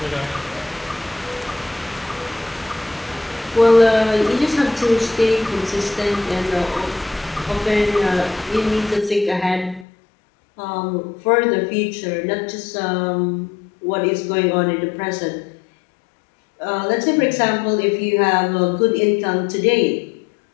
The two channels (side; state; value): right; drops out; at 9.9 s